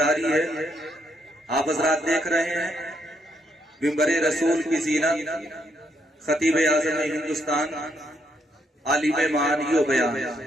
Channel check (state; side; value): normal; both; correlation 0.75